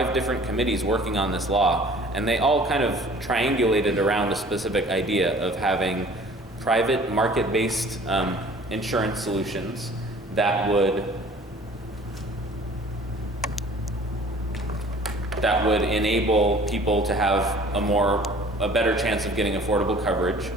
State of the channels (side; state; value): both; normal; correlation 0.50